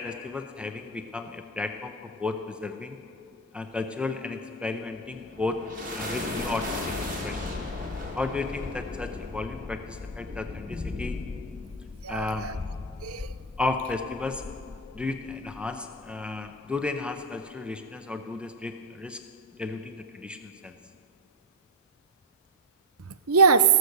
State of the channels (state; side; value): normal; both; correlation 0.10